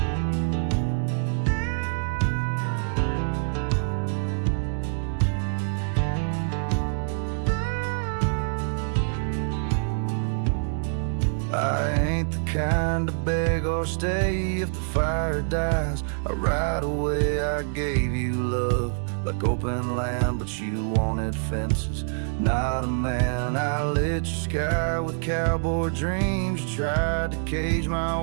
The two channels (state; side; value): silent; left; digital silence